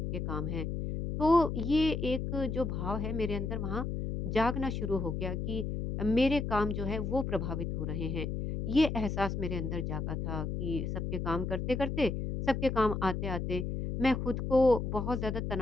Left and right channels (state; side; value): noise; left; hum, 3 dB below the sound